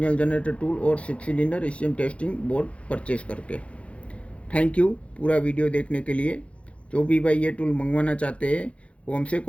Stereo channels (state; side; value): late; right; 0.062 ms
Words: generator tool और 6 cylinder ECM testing board purchase करके। थैंक यू पूरा वीडियो देखने के लिए। जो भी भाई ये टूल मंगवाना चाहते हैं वो हमसे